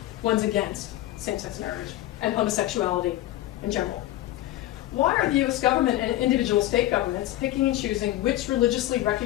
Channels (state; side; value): quieter; right; 15.1 dB